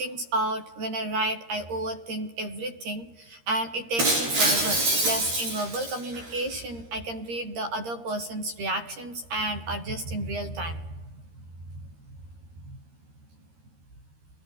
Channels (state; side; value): late; left; 13 ms